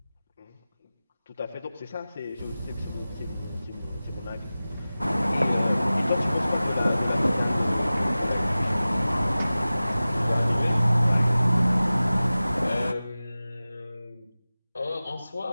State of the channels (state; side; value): inverted; both; correlation -0.97